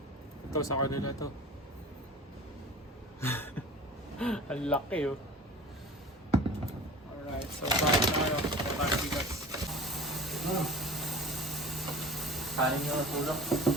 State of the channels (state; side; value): normal; both; correlation 0.40